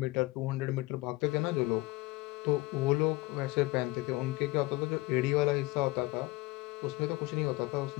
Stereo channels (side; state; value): right; quieter; 21.4 dB